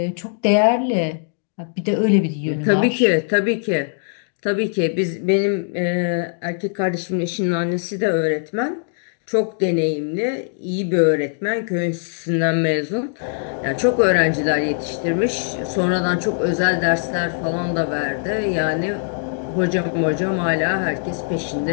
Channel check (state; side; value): silent; right; digital silence